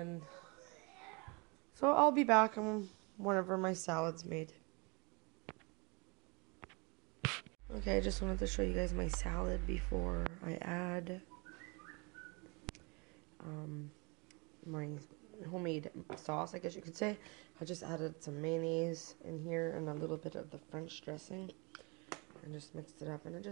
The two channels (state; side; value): quieter; left; 29.8 dB